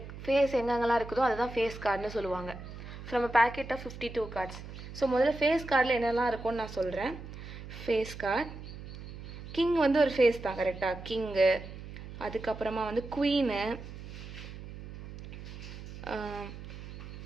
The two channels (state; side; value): noise; right; hum, 12 dB below the sound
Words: எங்கெங்கெல்லாம் இருக்குதோ அதுதான் face கார்டுன்னு சொல்லுவாங்க. From a packet of 52 cards. So முதல்ல ஃபேஸ் கார்டில் என்னெல்லாம் இருக்கும்னு நான் சொல்கிறேன். ஃபேஸ் கார்டு கிங் வந்து ஒரு ஃபேஸ் தான், கரெக்டாக கிங்கு. அதுக்கப்புறமா வந்து குவீனு,